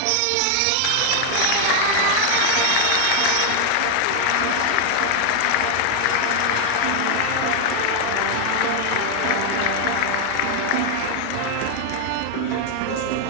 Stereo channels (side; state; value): both; different; correlation 0.00